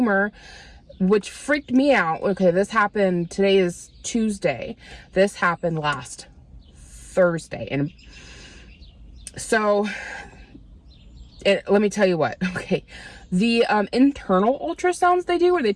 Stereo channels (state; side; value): identical; both; correlation 1.00